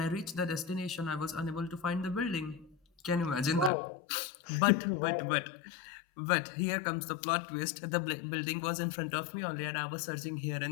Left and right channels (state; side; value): drops out; right; at 3.7 s